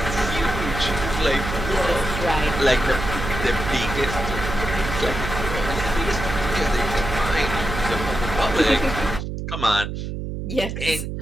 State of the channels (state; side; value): noise; right; hum, 5 dB below the sound